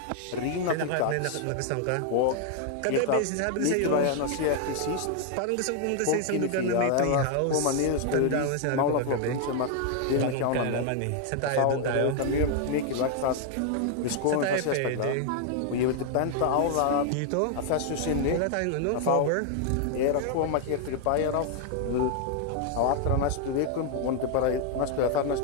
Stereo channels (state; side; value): different; both; correlation 0.00